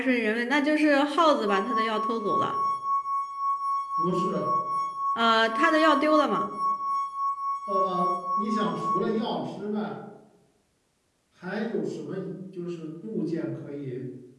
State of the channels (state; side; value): identical; both; correlation 1.00